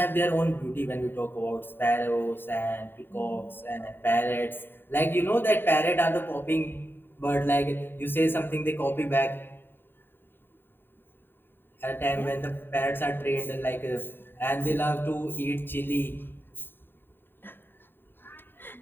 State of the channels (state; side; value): late; right; 0.098 ms